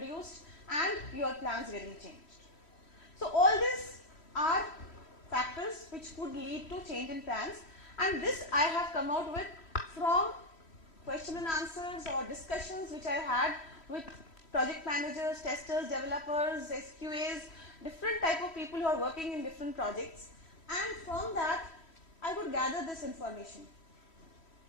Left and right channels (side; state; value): right; late; 3.1 ms